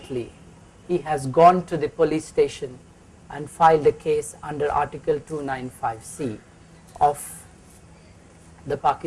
he has gone to the police station and filed a case under Article 295C of the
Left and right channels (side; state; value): both; identical; correlation 1.00